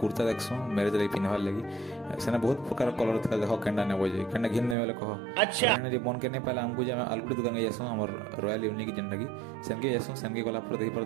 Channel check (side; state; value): left; drops out; at 4.8 s